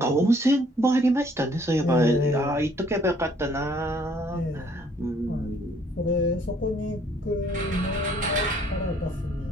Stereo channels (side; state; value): both; normal; correlation 0.62